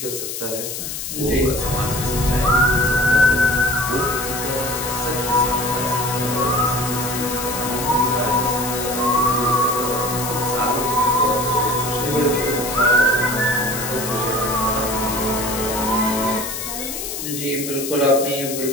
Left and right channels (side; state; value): left; noise; hiss, 6 dB below the sound